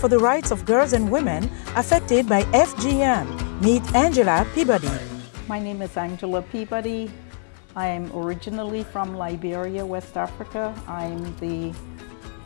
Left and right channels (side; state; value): right; silent; 63 dB below the other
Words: the rights of girls and women affected by FGM. Meet Angela Peabody. My name is Angela Peabody. I am originally from Liberia, West Africa. I'm the